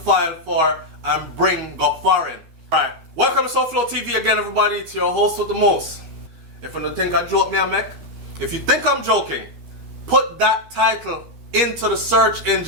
for and bring go foreign. Alright, welcome to SouFLoTV again everybody. It's your host with the most. If you don't think I joke me I make, if you think I'm joking, put that title into the search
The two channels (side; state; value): left; late; 13 ms